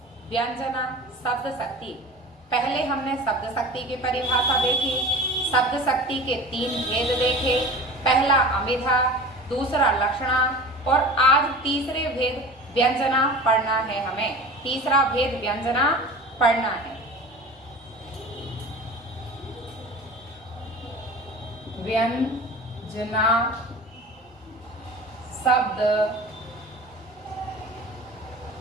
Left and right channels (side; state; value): both; normal; correlation 0.36